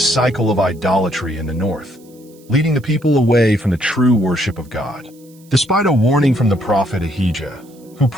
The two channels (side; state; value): right; noise; hiss, 29 dB below the sound